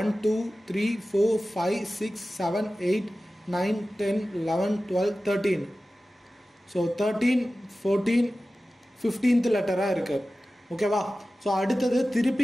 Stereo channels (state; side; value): normal; both; correlation 0.95